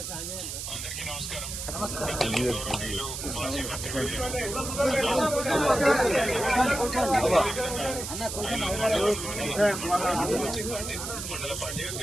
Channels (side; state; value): right; noise; hiss, 6 dB below the sound